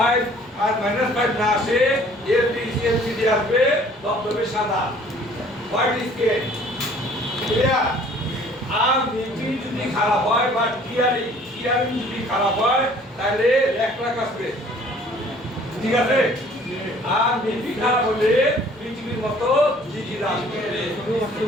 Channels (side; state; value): both; normal; correlation 0.54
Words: আর -5 না আসে এলসিডি আসবে তবে সাদা হোয়াইট স্ক্রিন ক্লিয়ার আর মিপি যদি খারাপ হয় বা টিআরই যদি খারাপ হয় তাহলে রেকলাক আসবে ঠিক আছে আর মিপি খারাপ হলে পৃথিবীর মতো জিজি আসবে